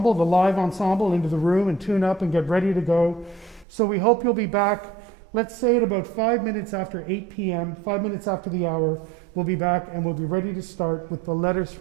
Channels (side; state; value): left; drops out; at 3.7 s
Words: the live ensemble, into the room and tune up and get ready to go. So we hope you'll be back, let's say at about 5 minutes after 8 p.m., 5 minutes after the hour, we'll be back and we'll be ready to start with the Letters